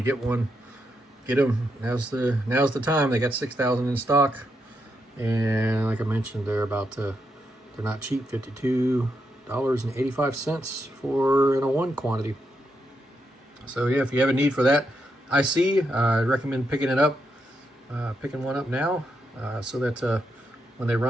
get one, get them. Now's the time. They got 6,000 in stock, and like I mentioned, they're not cheap. $52.85 for in a one quantity. So yeah, if you have a need for that IC, I'd recommend picking one up now, so that when they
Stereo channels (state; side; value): normal; both; correlation 0.82